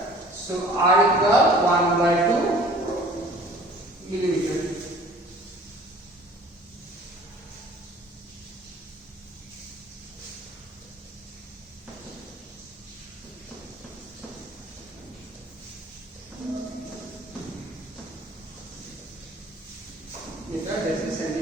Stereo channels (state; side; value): normal; both; correlation 0.50